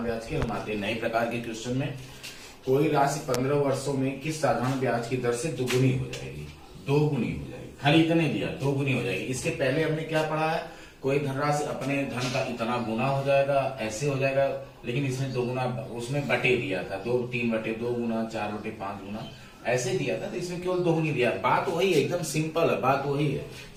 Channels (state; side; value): identical; both; correlation 1.00